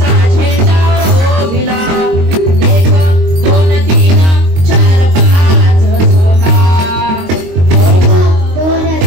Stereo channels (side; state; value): left; late; 22 ms